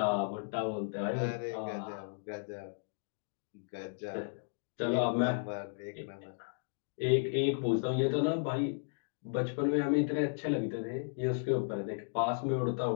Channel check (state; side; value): silent; right; digital silence